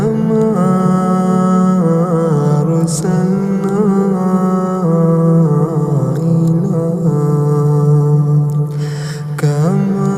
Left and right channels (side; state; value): both; identical; correlation 1.00